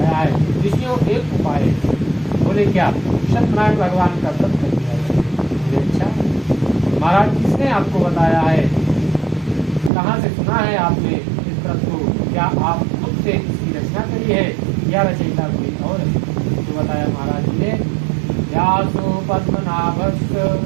है ऋषियों एक उपाय है। बोले क्या? सत्यनारायण भगवान का व्रत कर दिया है। बोले अच्छा महाराज किसने आपको बताया है, कहाँ से सुना है आपने इस व्रत को? क्या आप खुद से इसकी रचना करी है या रचयिता कोई और? तो बताया महाराज जी ने, व्यासो पद्मनाभस्य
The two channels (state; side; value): drops out; left; at 9.9 s